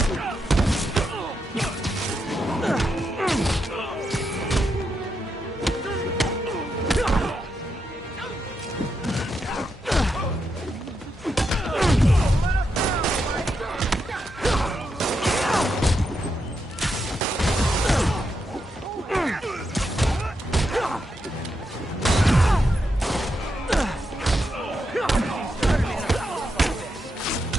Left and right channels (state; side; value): normal; both; correlation 0.83